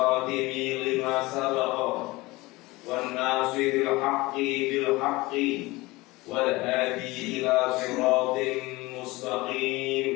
lima sabaqa wan nasiril haqqi bil haqqi wal hadi ila siratin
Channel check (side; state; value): right; quieter; 21.4 dB